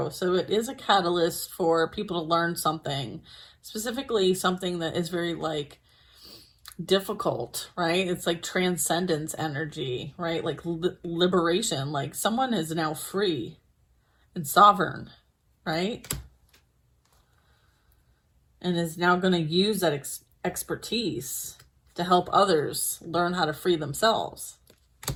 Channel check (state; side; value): identical; both; correlation 1.00